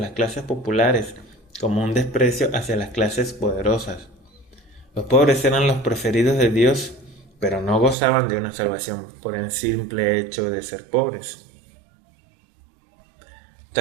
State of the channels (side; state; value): left; drops out; at 8.0 s